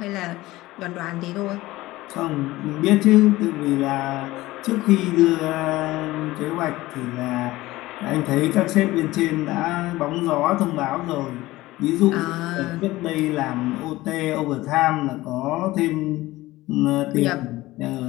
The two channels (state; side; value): quieter; right; 18.1 dB